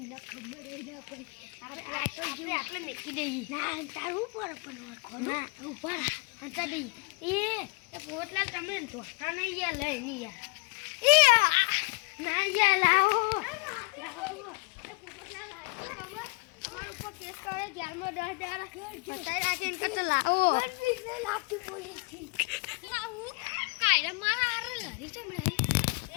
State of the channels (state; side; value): quieter; right; 29.7 dB